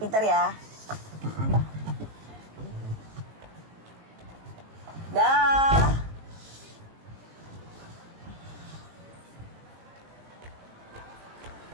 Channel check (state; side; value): late; left; 19 ms